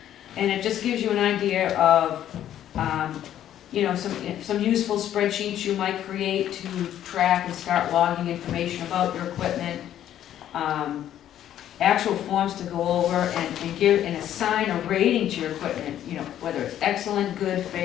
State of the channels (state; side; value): quieter; right; 11.3 dB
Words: And it just gives you an idea of, you know, some useful spreadsheets you might create to track and start logging information about your equipment. Actual forms to go over and give and assign a rating to your equipment, you know, whether it's excellent, good,